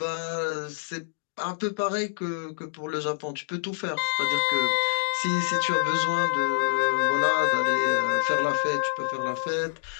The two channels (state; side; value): silent; right; digital silence